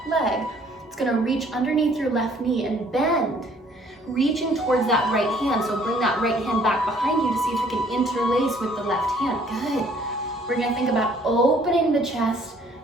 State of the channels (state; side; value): normal; both; correlation 0.60